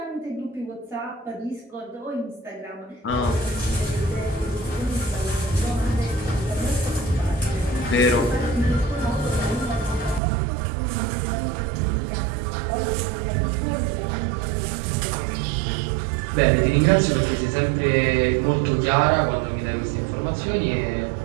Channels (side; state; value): left; drops out; at 10.2 s